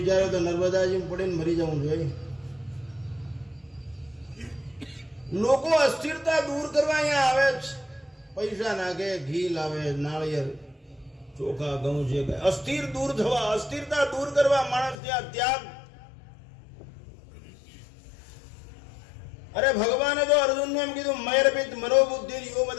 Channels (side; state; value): right; drops out; at 15.0 s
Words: તો નર્મદાજી પડીને મરી જવું જોઈએ. લોકો અસ્થિરતા દૂર કરવા અહીંયા આવે છે. પૈસા નાખે, ઘી લાવે, નાળિયેર, ચોખા, ઘઉં છે. અસ્થિર દૂર થવા, અસ્થિરતા દૂર કરવા માણસ ત્યાં ત્યાગ. અરે ભગવાને તો અર્જુનને એમ કીધું મૈરપિત મનોબુદ્ધિ યો